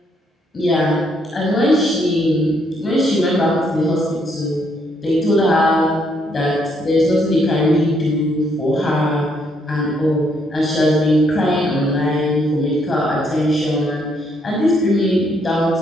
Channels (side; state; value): both; normal; correlation 0.72